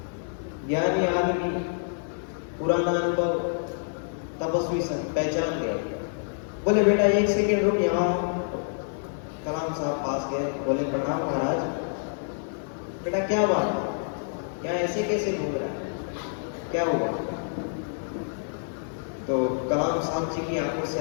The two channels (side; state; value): right; silent; 60 dB below the other